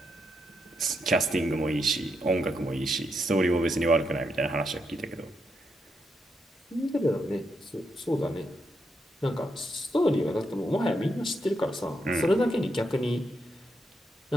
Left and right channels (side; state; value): both; normal; correlation 0.81